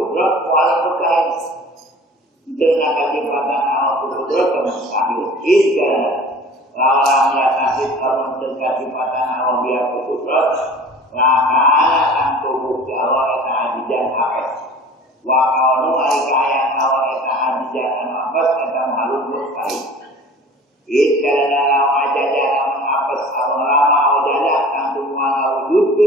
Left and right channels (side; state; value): both; normal; correlation 0.43